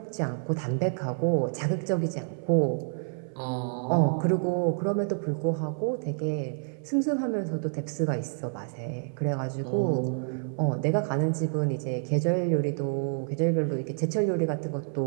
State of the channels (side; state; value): left; silent; 59 dB below the other